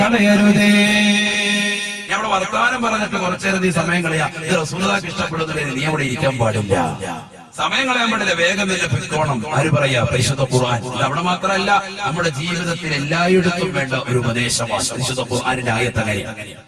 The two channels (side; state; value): both; identical; correlation 1.00